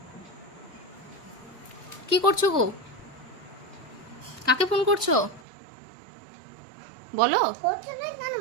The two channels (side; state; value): left; drops out; at 5.5 s